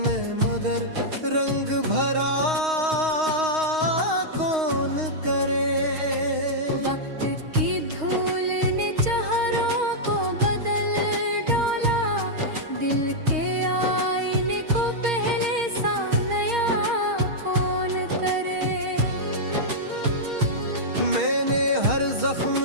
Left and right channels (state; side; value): late; left; 6.4 ms